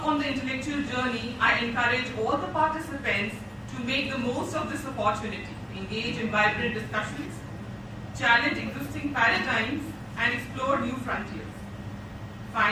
on the intellectual journey, I encourage all the participants to make the most of this opportunity, engage in vibrant discussions, challenge existing paradigms, and explore new frontiers.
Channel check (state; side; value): identical; both; correlation 1.00